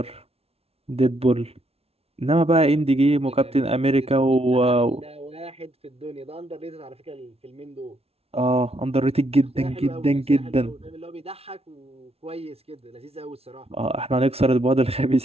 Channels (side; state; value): left; late; 0.30 ms